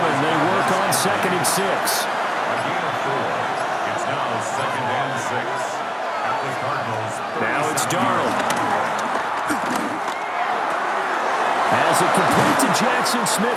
they work on 2nd and 6. Again of 4. It's now 2nd and 6 at the Cardinals. Now it's Darnold. As it complete to Jackson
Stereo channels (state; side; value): identical; both; correlation 1.00